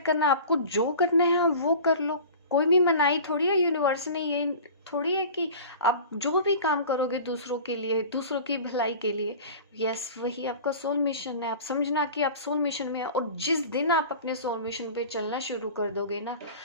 करना है, आपको जो करना है आप वो कर लो। कोई भी मनाही थोड़ी है यूनिवर्स ने, ये थोड़ी है कि आप जो भी काम करोगे दूसरों के लिए, दूसरों की भलाई के लिए, यस, वही आपका सोल मिशन है। आप समझना कि आप सोल मिशन में है, और जिस दिन आप अपने सोल मिशन पे चलना शुरू कर दोगे ना,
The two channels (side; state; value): both; inverted; correlation -0.39